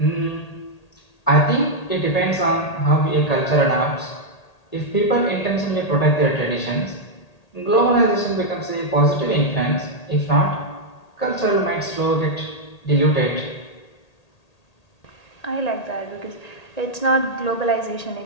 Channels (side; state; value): right; late; 1.8 ms